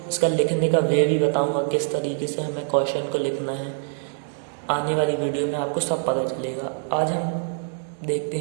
इसका लिखने का वे भी बताऊंगा, किस तरीके से हमें क्वेश्चन को लिखना है। आने वाली वीडियो में आपको सब पता चलेगा। आज हम देखते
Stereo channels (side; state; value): left; silent; digital silence